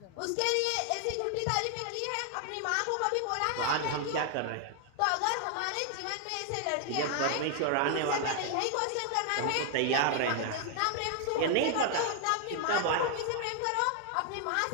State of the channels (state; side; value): different; both; correlation 0.00